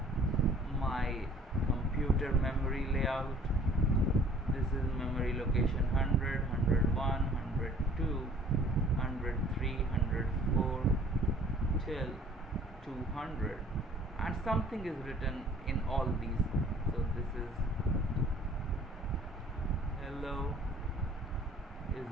my computer memory layout. This is memory location 100, 101, 102, 103, 104 till 200, and something is written in all these. So this is hello is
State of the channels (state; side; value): normal; both; correlation 0.53